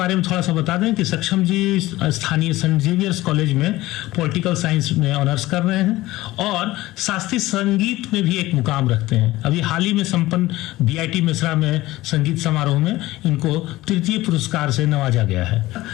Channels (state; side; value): quieter; right; 17.7 dB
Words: में थोड़ा सा बता दें कि सक्षम जी स्थानीय सेंट जेवियर्स कॉलेज में पॉलिटिकल साइंस में ऑनर्स कर रहे हैं और शास्त्रीय संगीत में भी एक मुकाम रखते हैं। अभी हाल ही में संपन्न बीआईटी मिश्रा में संगीत समारोह में इनको तृतीय पुरस्कार से नवाजा गया है।